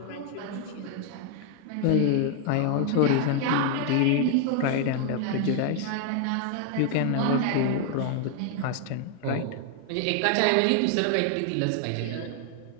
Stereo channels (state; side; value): different; both; correlation 0.00